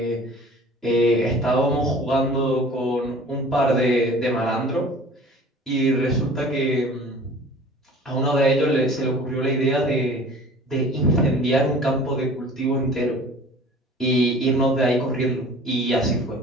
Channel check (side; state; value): both; normal; correlation 0.45